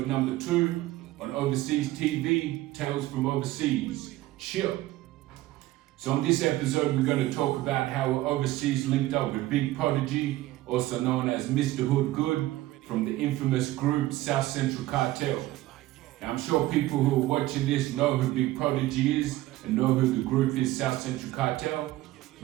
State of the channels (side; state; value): left; quieter; 16.6 dB